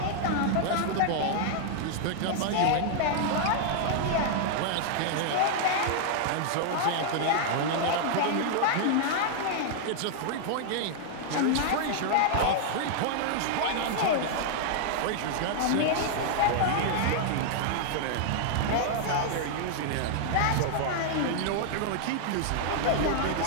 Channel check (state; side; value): different; both; correlation -0.01